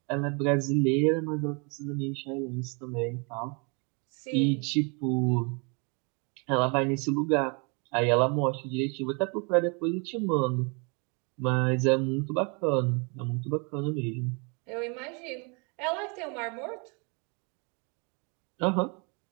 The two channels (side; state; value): left; quieter; 33.7 dB